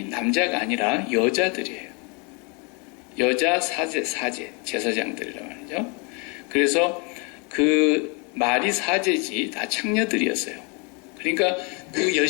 남자가 아니라 여자들이에요. 여자 사제 제사장들이란 말이죠. 그래서 그 말이 사제지 다 창녀들이었어요. 그러니까 그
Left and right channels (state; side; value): quieter; right; 33.1 dB